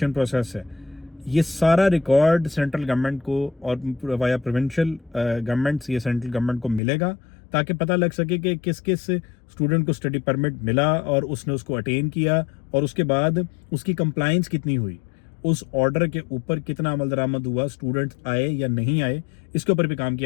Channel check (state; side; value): drops out; right; at 6.8 s